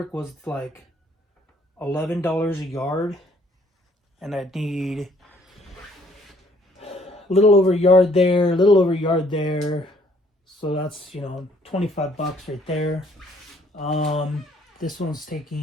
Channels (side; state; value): both; normal; correlation 0.63